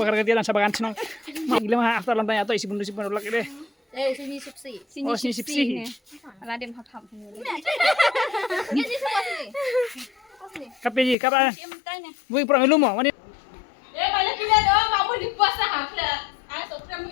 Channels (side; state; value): right; drops out; at 11.2 s